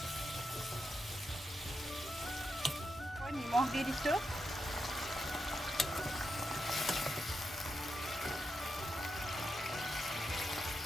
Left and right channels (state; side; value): normal; both; correlation 0.85